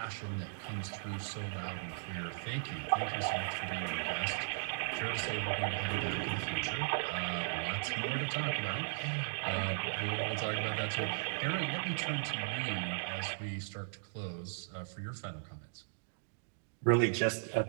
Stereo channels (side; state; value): left; silent; digital silence